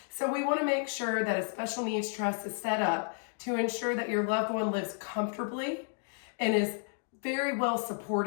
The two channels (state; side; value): silent; right; 56 dB below the other